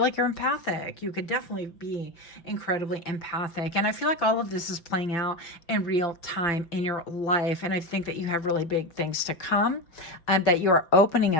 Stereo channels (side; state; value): right; late; 5.9 ms